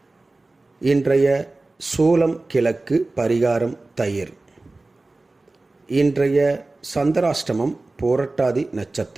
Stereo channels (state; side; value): quieter; left; 3.1 dB